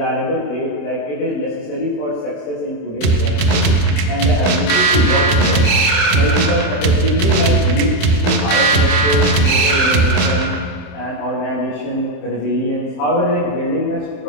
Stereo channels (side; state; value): right; late; 27 ms